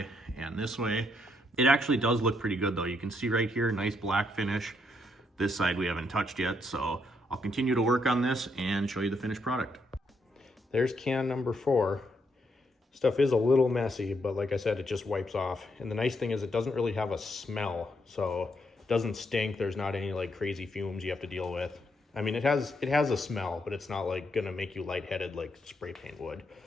and this way. It actually does look pretty good though. You can see right here, nice black finish. This side we haven't touched yet, so I'll continue to work on this and show you the finished product. There's can number 4. Stuff is a little messy, but like I said, it just wipes off. And the nice thing is it doesn't really have a smell, so it doesn't stink. There's not any like crazy fumes you have to deal with. I mean, it has a smell, but it's not like gonna make you lightheaded like spray paint would.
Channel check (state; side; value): normal; both; correlation 0.76